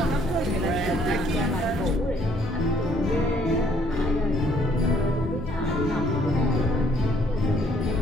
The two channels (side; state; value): both; normal; correlation 0.64